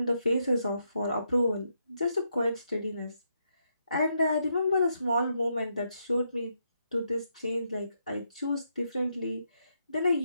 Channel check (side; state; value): both; inverted; correlation -0.80